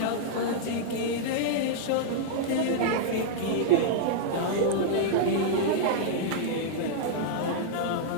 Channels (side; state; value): both; different; correlation -0.02